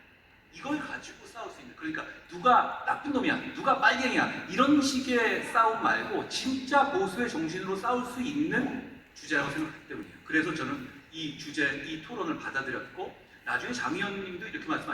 이걸 가지고 싸울 수 있는, 그러니까 누가 나쁜 놈이야, 누가 빨갱이야 이런 식의 싸움 말고 진짜 보수의 정신으로 싸울 수 있는 주제라고 생각하기 때문이에요. 그래서 저는 이 토론을 받아들였고 나중에 장 의원님도 이렇게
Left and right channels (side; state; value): both; identical; correlation 1.00